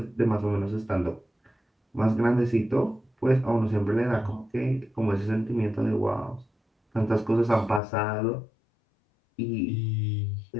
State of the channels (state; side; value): drops out; right; at 7.8 s